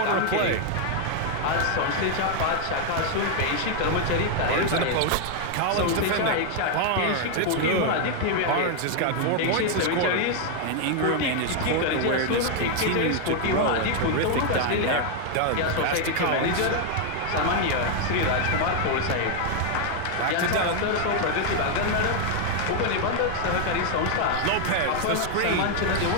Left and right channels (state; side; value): different; both; correlation 0.00